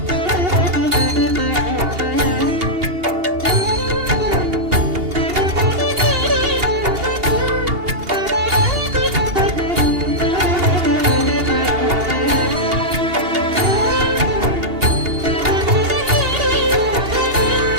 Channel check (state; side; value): late; left; 2.8 ms